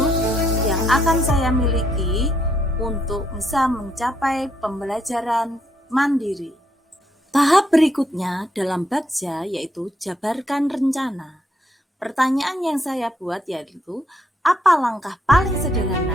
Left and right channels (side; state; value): both; normal; correlation 0.75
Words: yang akan saya miliki untuk bisa mencapai pembelajaran mandiri. Tahap berikutnya dalam Bagja yaitu jabarkan rencana. Pertanyaan yang saya buat yaitu apa langkah paling